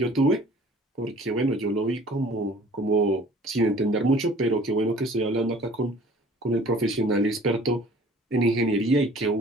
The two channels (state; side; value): normal; both; correlation 0.51